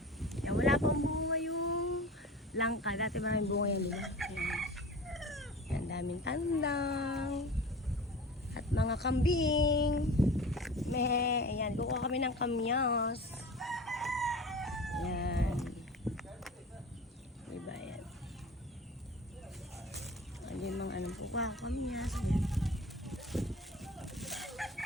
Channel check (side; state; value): both; normal; correlation 0.36